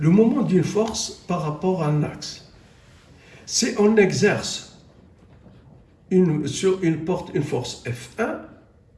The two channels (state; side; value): identical; both; correlation 1.00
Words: le moment d'une force par rapport à un axe. Si on exerce sur une porte une force F1